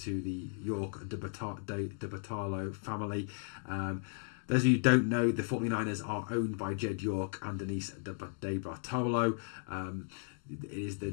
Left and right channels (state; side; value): silent; right; 54 dB below the other